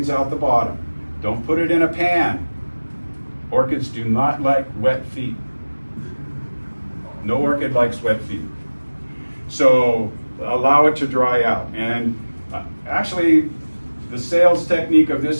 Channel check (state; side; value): inverted; both; correlation -1.00